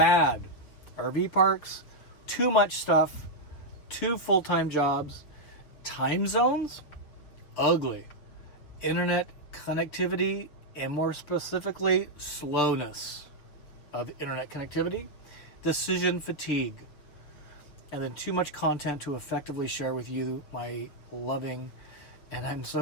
RV parks, too much stuff, 2 full-time jobs, time zones, ugly, internet connectivity, and more specifically, slowness of internet connectivity, decision fatigue, and then too much content to effectively share with you, my loving, and I'm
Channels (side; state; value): right; late; 7.1 ms